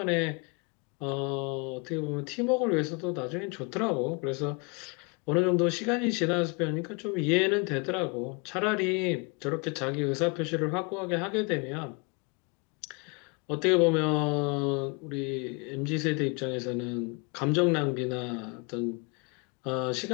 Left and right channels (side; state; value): right; quieter; 32.0 dB